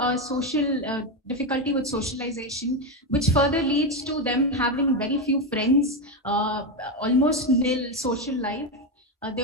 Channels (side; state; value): both; normal; correlation 0.10